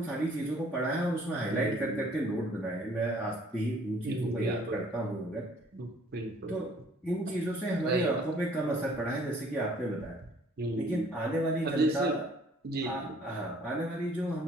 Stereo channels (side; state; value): both; normal; correlation 0.58